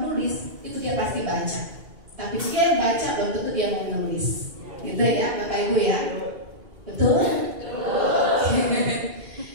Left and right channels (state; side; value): late; left; 2.3 ms